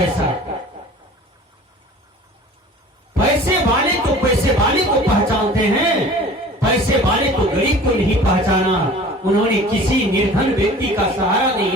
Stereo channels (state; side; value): normal; both; correlation 0.44